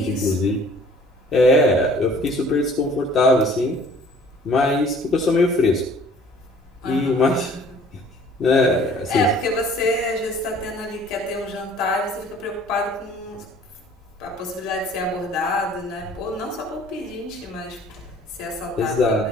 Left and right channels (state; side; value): normal; both; correlation 0.52